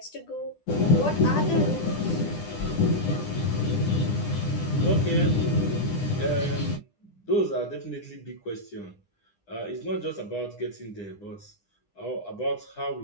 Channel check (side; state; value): right; late; 9.9 ms